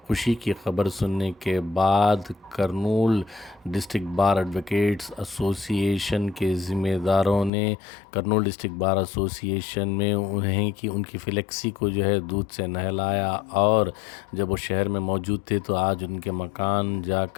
खुशी की खबर सुनने के बाद Kurnool district bar advocates association के ज़िम्मेदारों ने करनूल डिस्ट्रिक्ट बार एसोसिएशन में उन्हें कि उनकी फ्लेक्सी को जो है दूध से नहलाया, और जब वो शहर में मौजूद थे तो आज उनके मकान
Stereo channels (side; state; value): right; drops out; at 7.5 s